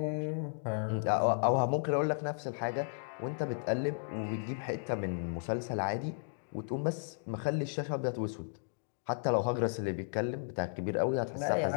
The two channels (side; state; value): right; silent; digital silence